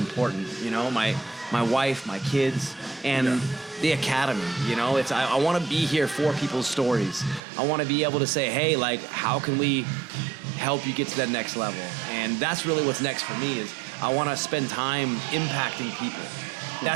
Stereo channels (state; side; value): drops out; left; at 7.4 s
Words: You know, my wife, my kids, and the academy. You know, I want to be here for people's stories. I want to be able to say, hey, like, how can we help you get to that next level? And that's really what's next for me. Is I want to spend time impacting people.